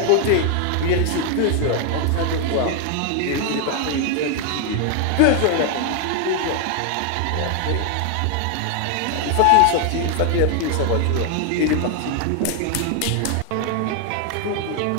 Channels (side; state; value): both; different; correlation 0.00